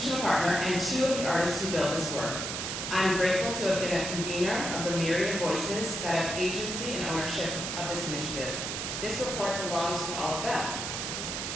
partner, and two of the artists who built this work. I'm grateful to have been a convener of the myriad voices that have agency and ownership of this initiative. This report belongs to all of them.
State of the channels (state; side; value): noise; right; hiss, 3 dB below the sound